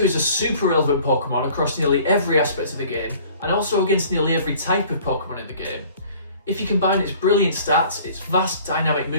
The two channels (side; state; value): both; inverted; correlation -0.51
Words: is a super relevant Pokemon across nearly every aspect of the game, and also against nearly every type of Pokemon in the game. If you combine its brilliant stats, its vast dynamic